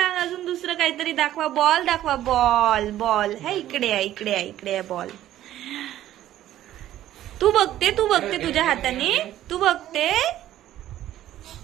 अजून दुसरं काहीतरी दाखवा. बॉल दाखवा. बॉल. बॉल है इकडे आहे, इकडे आहे, इकडे आहे बॉल. तू बघते तुझ्या हाताने. तू बघते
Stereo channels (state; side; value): quieter; left; 13.0 dB